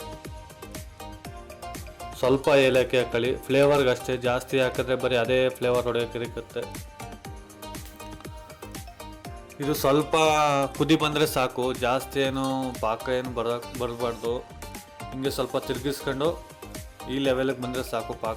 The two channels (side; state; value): both; identical; correlation 1.00